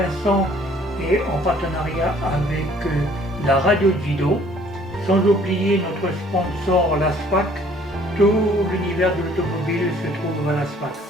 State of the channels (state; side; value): normal; both; correlation 0.58